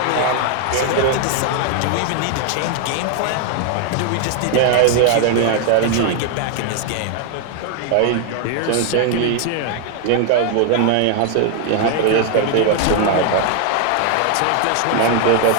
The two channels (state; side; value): different; both; correlation 0.00